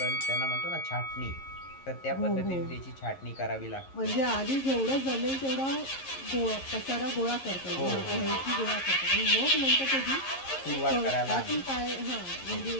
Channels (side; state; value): right; late; 11 ms